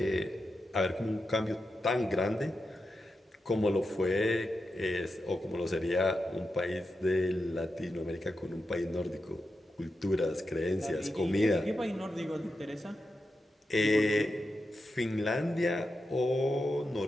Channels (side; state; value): both; normal; correlation 0.88